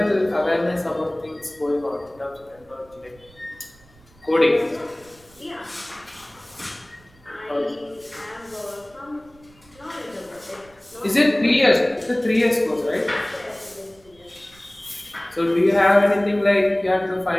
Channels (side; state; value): right; noise; rumble, 28 dB below the sound